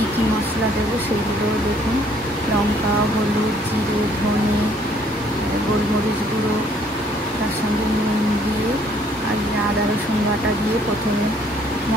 কী মশলা দেবো সেইগুলো দেখুন। লঙ্কা, হলুদ, জিরে, ধনে, গোলমরিচ গুঁড়ো, তার সঙ্গে নুন দিয়ে আর আদা রসুন বাটা দিয়ে প্রথমে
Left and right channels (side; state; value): both; normal; correlation 0.63